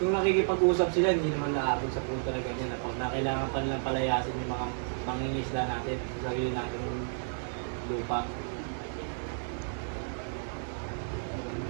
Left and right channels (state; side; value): silent; left; 57 dB below the other